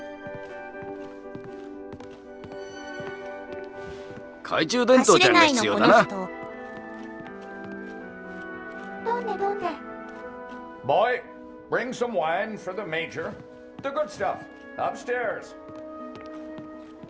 懐中電灯走れちゃんがないのこの必要だな。人。どんでどんで。 Boy, bring some wine for the Major. The good stuff, upstairs.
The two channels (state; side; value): identical; both; correlation 1.00